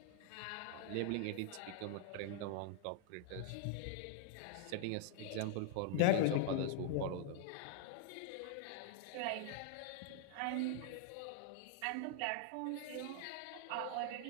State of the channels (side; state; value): both; different; correlation 0.00